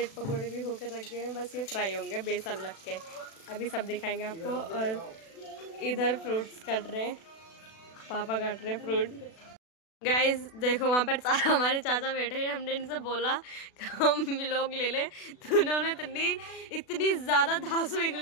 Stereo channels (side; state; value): right; late; 36 ms